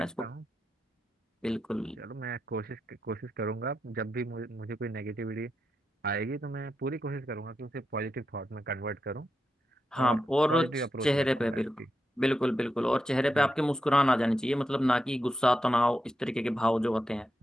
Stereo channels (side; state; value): both; normal; correlation 0.86